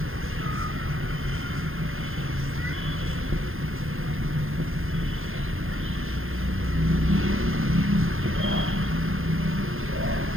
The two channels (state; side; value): late; left; 0.60 ms